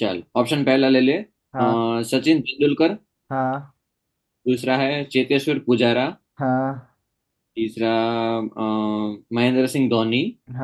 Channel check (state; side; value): identical; both; correlation 1.00